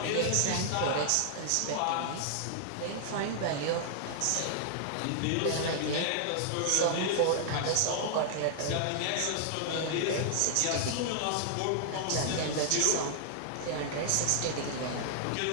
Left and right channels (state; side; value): different; both; correlation -0.01